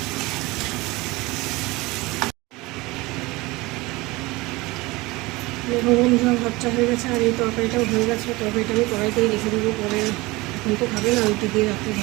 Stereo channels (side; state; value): left; quieter; 22.2 dB